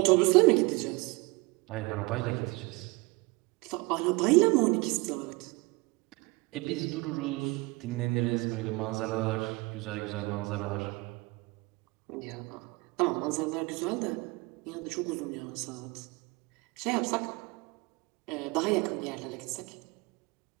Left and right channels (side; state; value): left; quieter; 25.2 dB